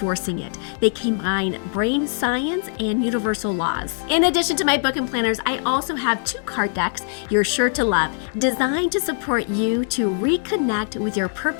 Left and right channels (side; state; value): right; silent; 60 dB below the other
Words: it. They combine brain science and universal laws. In addition to my book and planners, I also have 2 card decks you're sure to love, designed to support you to reconnect with your